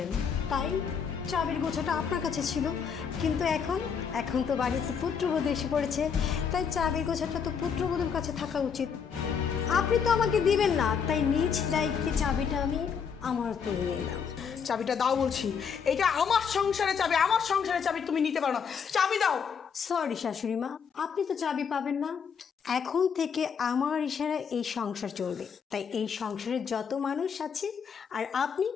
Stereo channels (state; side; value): quieter; right; 6.7 dB